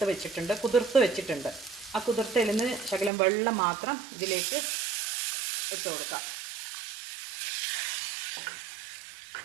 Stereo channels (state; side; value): drops out; left; at 3.1 s